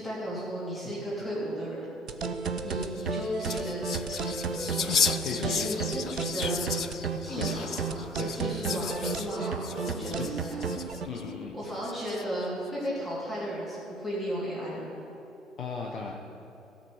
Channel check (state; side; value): normal; both; correlation 0.48